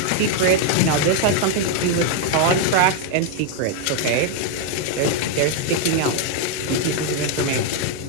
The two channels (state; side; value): different; both; correlation 0.00